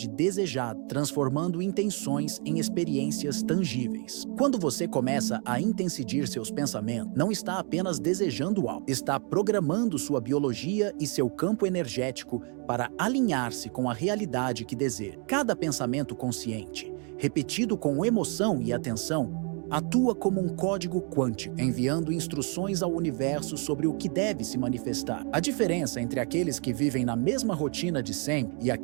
desejado, transformando intenções em experiências tangíveis. Quando você começa a intensidir seus pensamentos, não está apenas desejando algo, está programando sua biologia e seu campo energético para alinhar-se com a realidade que deseja. Cada pensamento consciente, repetido com emoção e atenção, atua como um código quântico, enviando instruções ao universo sobre o que deve se manifestar. A diferença entre aqueles que vivem na mesma rotina de sempre e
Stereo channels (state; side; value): quieter; left; 37.8 dB